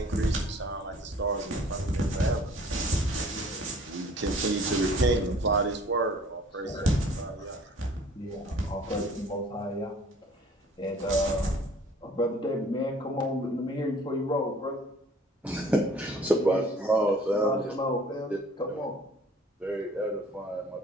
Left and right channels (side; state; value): both; normal; correlation 0.53